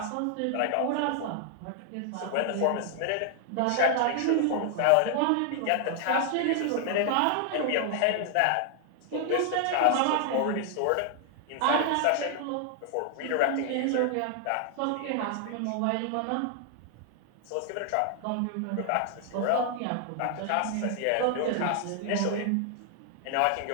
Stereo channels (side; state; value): both; different; correlation 0.00